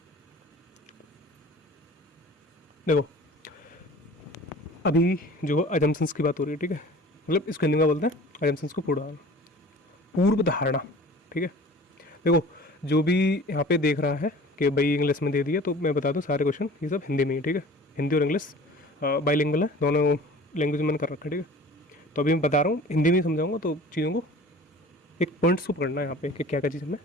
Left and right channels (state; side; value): normal; both; correlation 0.44